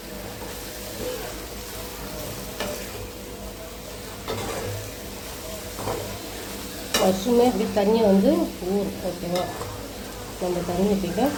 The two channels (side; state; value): both; identical; correlation 1.00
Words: மஷ்ரூமே அப்படி தண்ணியை வந்து ஓகேவா, நம்ம தண்ணி ஊற்றிக்க